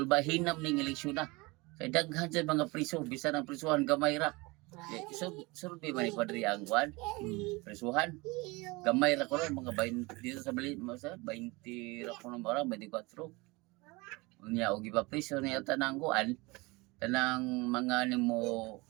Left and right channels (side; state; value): left; quieter; 24.5 dB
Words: ning eleksyon na kay daghan sa mga priso bisan ang prisuhan gamay ra survey man ni Padre ang kwan prisuhan gamay ra ko mga 20 dito sa Bali 20 ra ko ng bara 24 unya og ipapriso niya tanang kuan tanang mga nimo